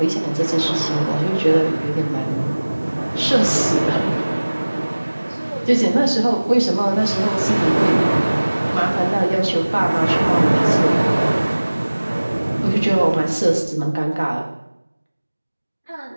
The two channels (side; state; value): both; inverted; correlation -1.00